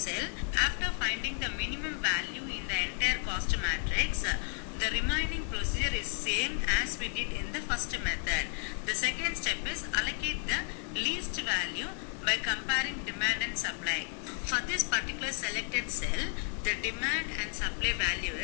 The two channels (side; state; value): right; quieter; 38.1 dB